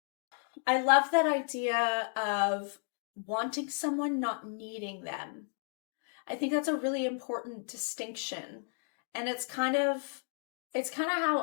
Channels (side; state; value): right; silent; 56 dB below the other